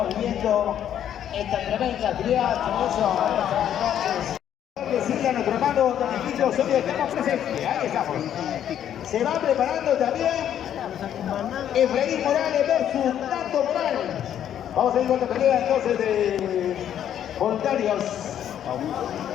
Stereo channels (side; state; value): right; quieter; 10.1 dB